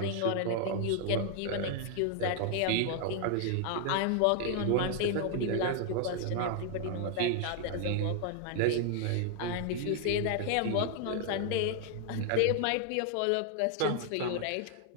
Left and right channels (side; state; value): both; different; correlation 0.00